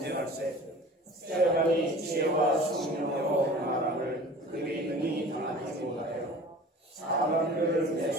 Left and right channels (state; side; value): normal; both; correlation 0.42